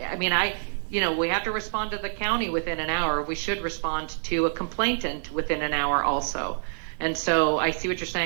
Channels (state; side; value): silent; left; 60 dB below the other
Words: we have to respond to the county within an hour. We should respond to a complainant within an hour also. And so I see what you're